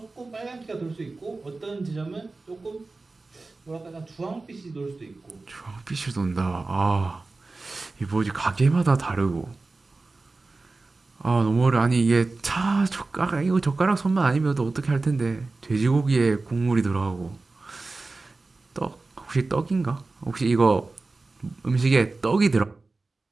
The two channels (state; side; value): quieter; left; 3.5 dB